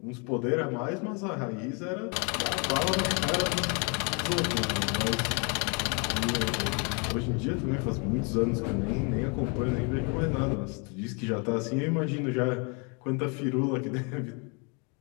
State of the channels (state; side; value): quieter; right; 34.2 dB